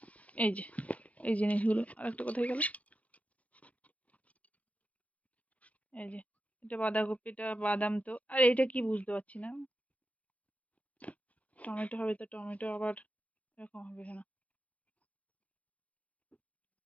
এই যে এই জিনিসগুলো। আর একটা কোথায় গেল? এই যে এটা বাঁধাকপিটা, বাদাম তো। আর এটা কি বুঝতে পারছি না। টমেটো হবে তো, টমেটো আবার এরকম হবে না।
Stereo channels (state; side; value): late; right; 0.066 ms